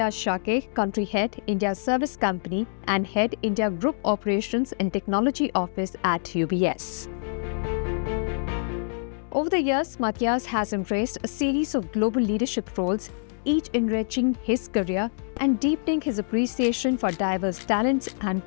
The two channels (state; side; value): silent; right; digital silence